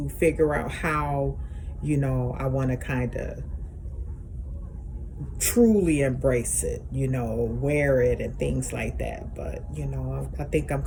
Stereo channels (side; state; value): both; identical; correlation 1.00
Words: figure out how, I want to kind of truly embrace it, wear it and things like that. But, I think I'm